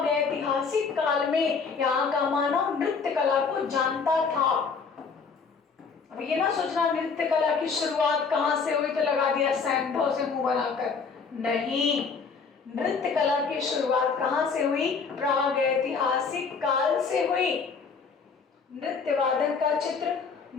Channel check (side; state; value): right; quieter; 5.2 dB